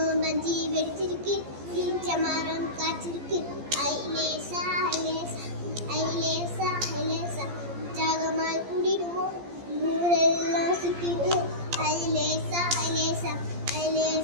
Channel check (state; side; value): late; left; 14 ms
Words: மஞ்சி வெடிச்சிருக்கு ஈச்ச மரம் காய்ச்சிருக்கு ஐலேசா ஐலேசா ஐலேசா ஐலேசா உற்சாகமாய் கூடிடுவோம் ஊரெல்லாம் சுத்திடுவோம் ஐலேசா ஐலேசா